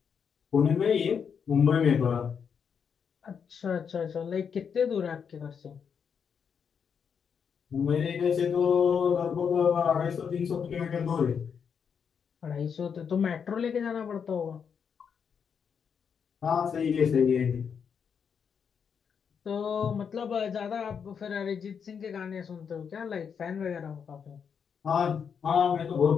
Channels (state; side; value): quieter; right; 6.9 dB